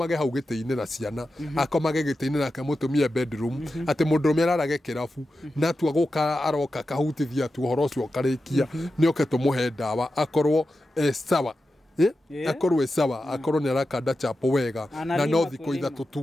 hau gĩtĩ-inĩ na ciana akomage gĩtĩ-inĩ nake mũtumia bedroom atĩ mũndũrũme ararage kĩrabu na tua gũka aroka kahutithia tu ũhoro ũcio ũkarĩkia nĩoke tũmũhe ndawa akorwo sawa akorwo sawa akorwo nĩ arakanda chapo wega na no thikũ 3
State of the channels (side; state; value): both; normal; correlation 0.91